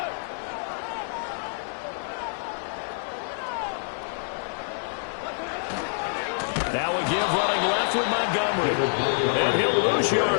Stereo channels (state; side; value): silent; right; digital silence